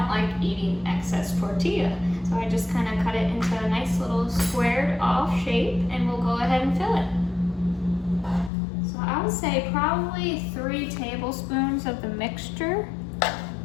like eating excess tortilla. So I just kind of cut it into a nice little squared off shape, and we'll go ahead and fill it. So I would say probably 3 tablespoons of the mixture.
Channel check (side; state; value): right; drops out; at 8.5 s